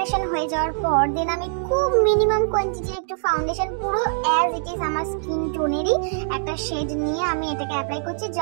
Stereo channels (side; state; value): left; silent; digital silence